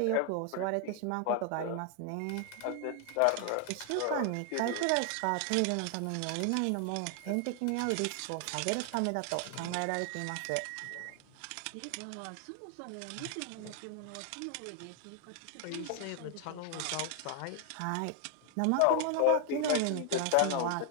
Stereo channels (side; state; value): both; different; correlation 0.00